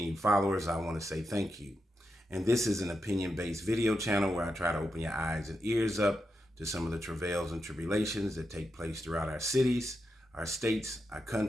followers, I want to say thank you. And this is an opinion-based video channel where I try to open your eyes and ears up to some of the travails and tribulations that take place throughout our cities, our states, our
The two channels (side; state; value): both; normal; correlation 0.86